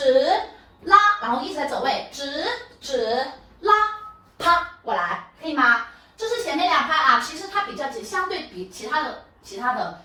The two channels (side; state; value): both; identical; correlation 1.00